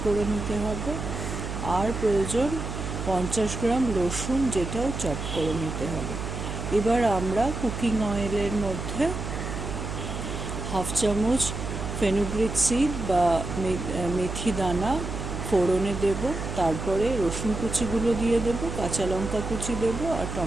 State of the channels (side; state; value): right; noise; hum, 6 dB below the sound